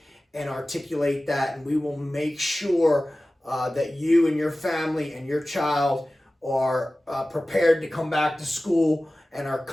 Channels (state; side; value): normal; both; correlation 0.96